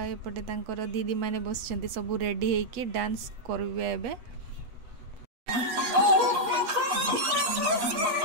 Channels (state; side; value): late; left; 8.1 ms